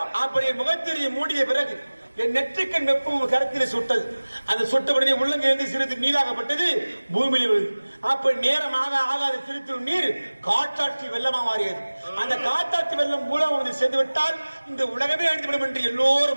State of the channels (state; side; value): inverted; both; correlation -1.00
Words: அப்படி என் முகத்திரையை மூடிய பிறகு என் நெற்றிக்கண் வெப்பம் கருத்தில் சுட்டது. அந்த சுட்டபடியே உள்ளங்கிருந்து சிறிது நீராகப்பட்டது, பூமியில் விழுது. அப்ப நேரமாக ஆகாத திருத்தூர் நீர் காற்றாற்றி வெள்ளமா மாறியது. அந்த காற்றாற்றி வெள்ளம் மூலம் வந்து சேர்ந்து விட்டால் இந்த உலகமே அழிந்துவிடும் என்று